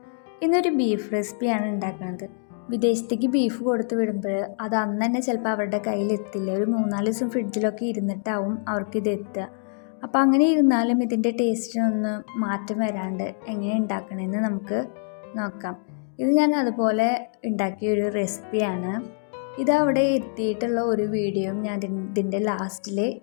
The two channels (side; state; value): right; silent; 62 dB below the other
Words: ഇന്നൊരു ബീഫ് റെസിപ്പിയാണ് ഉണ്ടാക്കുന്നത്. വിദേശത്തേക്ക് ബീഫ് കൊടുത്ത് വിടുമ്പോൾ അത് അന്ന് തന്നെ ചിലപ്പോൾ അവരുടെ കയ്യിലെത്തില്ല. ഒരു 3-4 ദിവസം ഫ്രിഡ്ജിലൊക്കെ ഇരുന്നിട്ടാവും അവർക്കിത് എത്തുക. അപ്പോൾ അങ്ങനെ ഇരുന്നാലും ഇതിൻ്റെ ടേസ്റ്റിനൊന്ന് മാറ്റം വരാണ്ട് എങ്ങനെ ഉണ്ടാക്കണമെന്ന് നമുക്ക് നോക്കാം. ഇത് ഞാൻ അതുപോലെ ഉണ്ടാക്കിയൊരു റെസിപ്പിയാണ്. ഇതവിടെ എത്തിയിട്ടുള്ള ഒരു വീഡിയോയും ഞാൻ ഇതിൻ്റെ ലാസ്റ്റിൽ